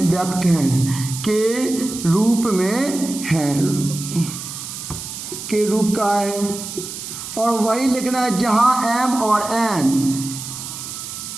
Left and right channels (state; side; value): noise; right; hiss, 9 dB below the sound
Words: व्यक्त हैं, के रूप में है, के रूप का है। और वही लिखना है जहाँ m और n,